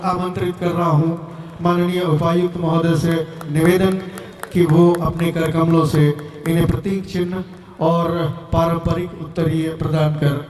आमंत्रित कर रहा हूँ। माननीय उपायुक्त महोदय से निवेदन कि वो अपने कर कमलों से इन्हें प्रतीक चिन्ह और पारंपरिक उत्तरीय प्रदान कर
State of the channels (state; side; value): identical; both; correlation 1.00